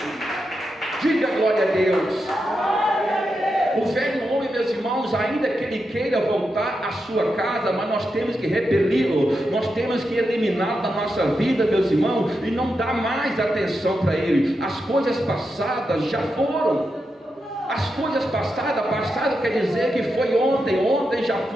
Diga glória a Deus. O velho homem, meus irmãos, ainda que ele queira voltar à sua casa, mas nós temos que repeli-lo, nós temos que eliminá-lo da nossa vida, meus irmãos, e não dar mais atenção para ele. As coisas passadas já foram. As coisas passadas, passado quer dizer que foi ontem, ontem já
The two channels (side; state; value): both; normal; correlation 0.87